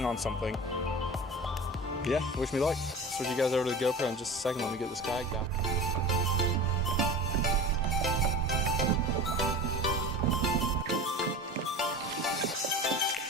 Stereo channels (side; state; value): both; normal; correlation 0.34